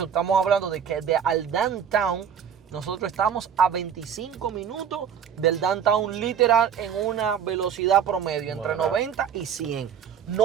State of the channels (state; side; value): quieter; left; 8.0 dB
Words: estamos hablando de que al downtown nosotros estamos a 25 minutos del downtown literal en una velocidad promedio entre 90 y 100.